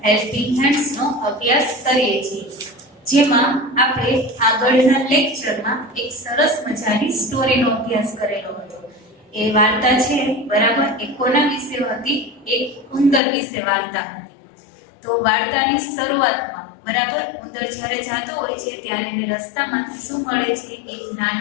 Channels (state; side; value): drops out; right; at 13.2 s